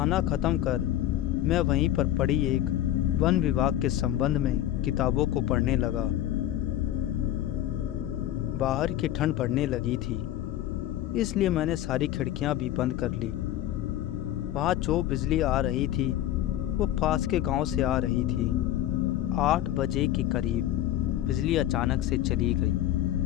ख़त्म कर मैं वहीं पर पड़ी एक वन विभाग के संबंध में किताबों को पढ़ने लगा। बाहर की ठंड पड़ने लगी थी, इसलिए मैंने सारी खिड़कियां भी बंद कर ली। वहाँ जो बिजली आ रही थी वो पास के गांव से आ रही थी। 8 बजे के करीब बिजली अचानक से चली गई।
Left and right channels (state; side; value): quieter; right; 12.9 dB